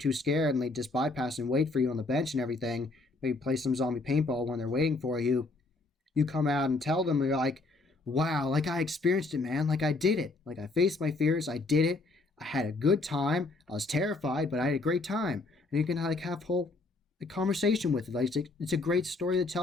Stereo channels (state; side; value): quieter; right; 3.4 dB